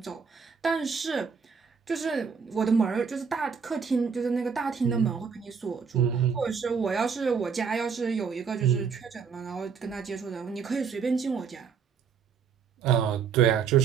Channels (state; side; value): quieter; left; 6.2 dB